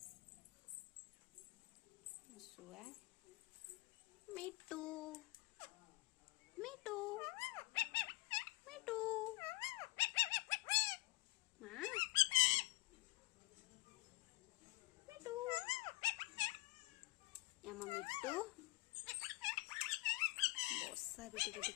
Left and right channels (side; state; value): right; quieter; 22.3 dB